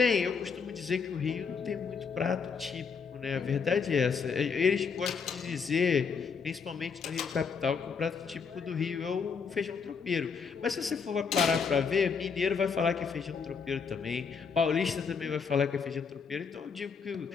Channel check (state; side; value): quieter; right; 5.8 dB